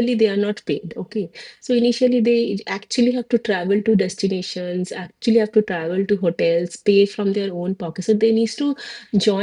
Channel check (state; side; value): identical; both; correlation 1.00